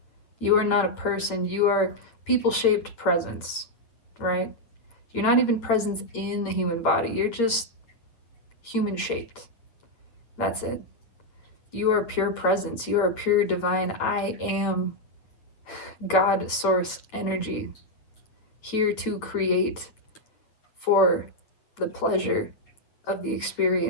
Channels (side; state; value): right; late; 8.5 ms